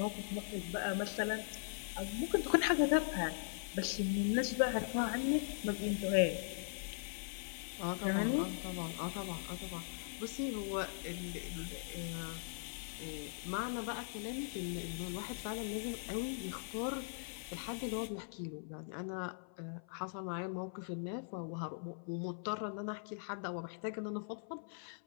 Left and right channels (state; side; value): silent; right; 51 dB below the other